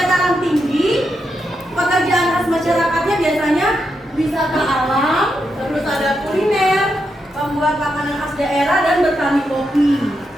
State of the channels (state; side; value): normal; both; correlation 0.84